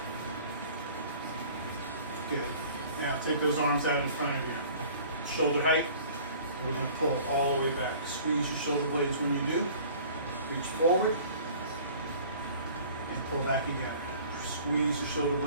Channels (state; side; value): inverted; both; correlation -0.48